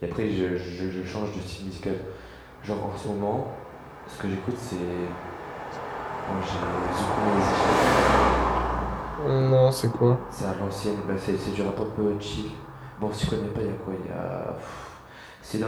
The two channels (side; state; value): both; identical; correlation 1.00